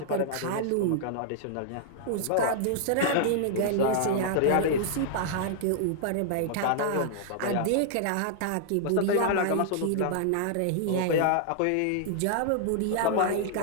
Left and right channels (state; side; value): different; both; correlation -0.01